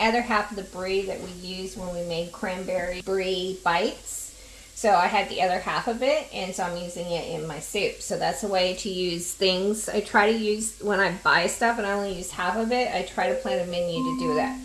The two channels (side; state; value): both; identical; correlation 1.00